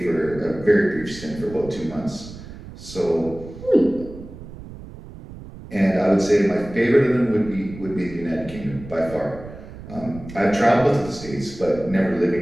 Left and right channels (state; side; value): noise; right; rumble, 15 dB below the sound